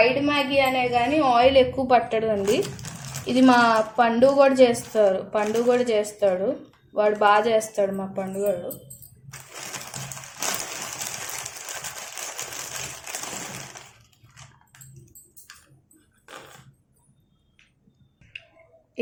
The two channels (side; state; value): both; identical; correlation 1.00